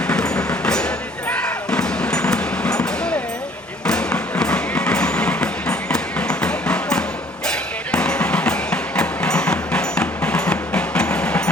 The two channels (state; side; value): normal; both; correlation 0.58